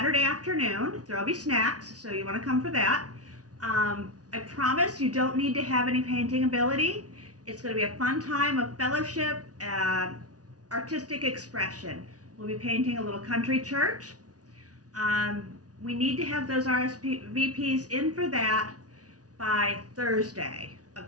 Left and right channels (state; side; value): late; left; 0.68 ms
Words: afternoon. There'll be snacks, so you want to come for that. I promise you don't need to have any painting ability. It's going to be a fun time of fellowship and artistic expression. We'll be painting a little country church. We need to have those RSVPs in for that by Thursday